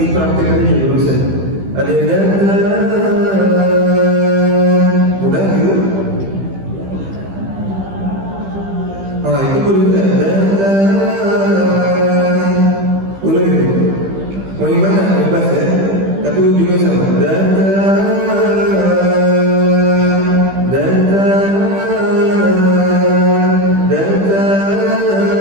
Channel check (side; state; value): left; late; 15 ms